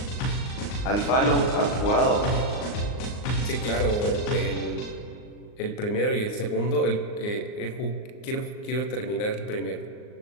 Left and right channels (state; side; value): late; right; 39 ms